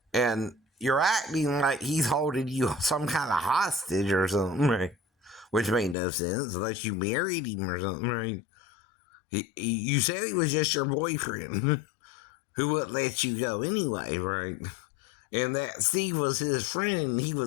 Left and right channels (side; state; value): right; drops out; at 6.0 s